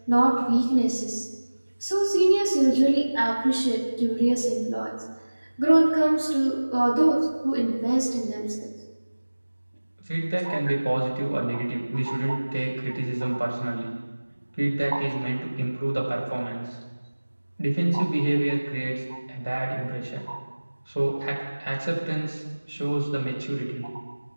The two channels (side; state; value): both; inverted; correlation -1.00